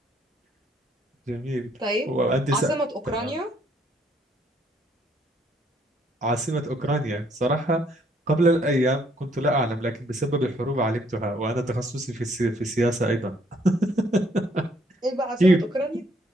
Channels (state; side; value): normal; both; correlation 0.67